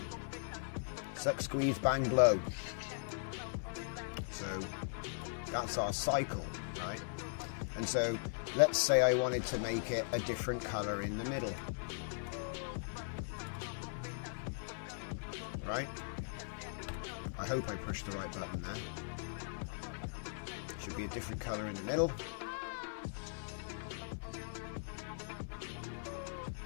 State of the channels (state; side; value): silent; right; digital silence